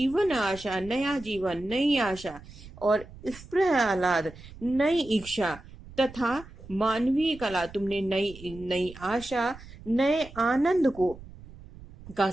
आशा, नया जीवन, नई आशा और इस प्रहलाद नई इच्छा तथा मानवीय कला, तुमने नई नई आशा, नए आनंद को का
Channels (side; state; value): right; noise; rumble, 18 dB below the sound